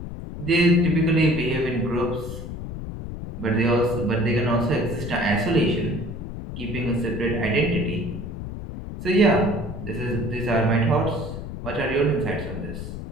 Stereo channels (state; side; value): noise; left; rumble, 8 dB below the sound